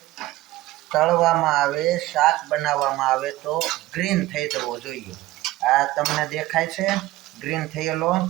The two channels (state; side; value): quieter; left; 17.4 dB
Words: તળવામાં આવે, શાક બનાવવામાં આવે તો ગ્રીન થઈ જવો જોઈએ. આ તમને દેખાય છે ગ્રીન થયેલો?